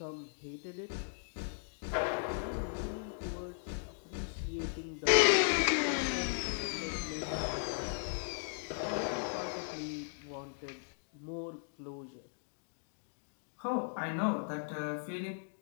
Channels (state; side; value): silent; right; digital silence